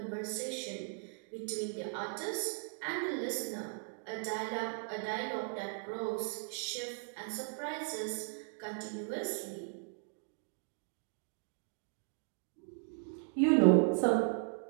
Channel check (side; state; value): left; silent; 53 dB below the other